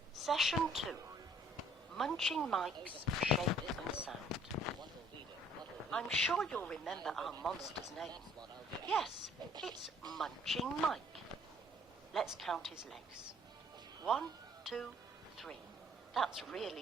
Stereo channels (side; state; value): both; normal; correlation 0.58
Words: Session 2. Munching Mike's shape and sound. I'm sure you'll remember our monster's name. Yes, it's Munching Mike. Let's count his legs. 1, 2, 3. That's